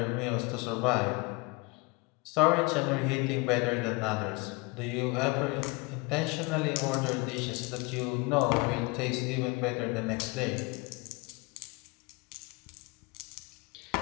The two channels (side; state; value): right; quieter; 26.8 dB